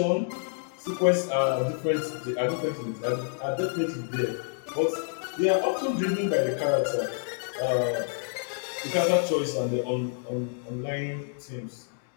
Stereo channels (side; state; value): right; silent; 59 dB below the other